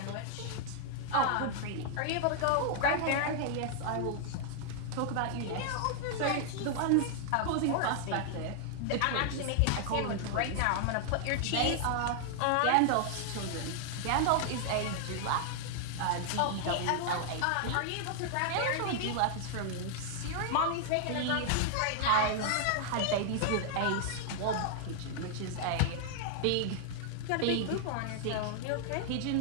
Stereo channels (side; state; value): both; different; correlation 0.00